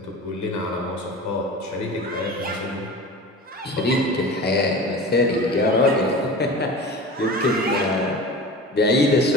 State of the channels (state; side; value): normal; both; correlation 0.34